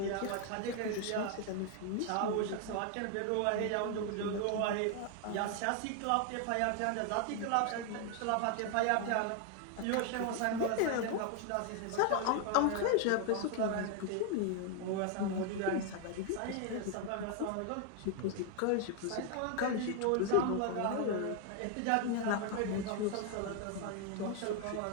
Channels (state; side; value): different; both; correlation 0.00